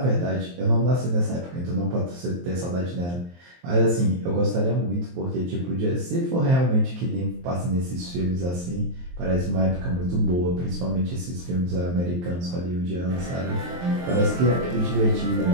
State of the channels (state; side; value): late; left; 23 ms